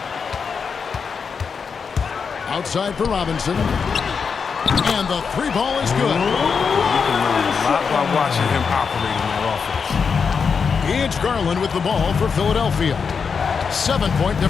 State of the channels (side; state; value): right; quieter; 5.8 dB